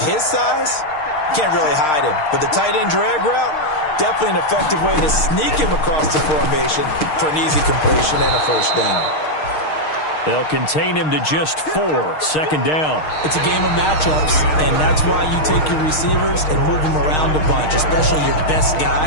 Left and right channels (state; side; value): late; right; 6.5 ms